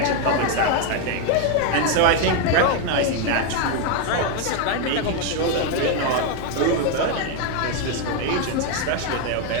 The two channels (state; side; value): different; both; correlation 0.01